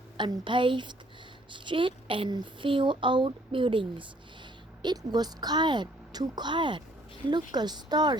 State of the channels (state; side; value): normal; both; correlation 0.62